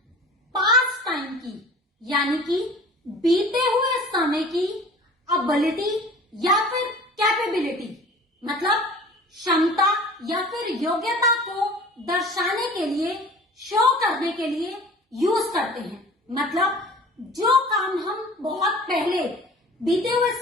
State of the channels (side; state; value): both; normal; correlation 0.44